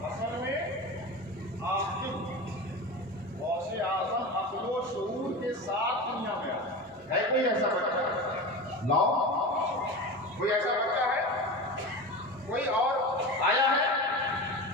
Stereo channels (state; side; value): normal; both; correlation 0.27